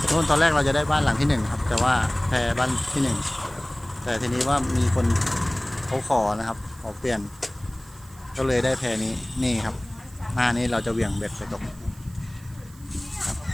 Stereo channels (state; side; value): noise; right; hiss, 24 dB below the sound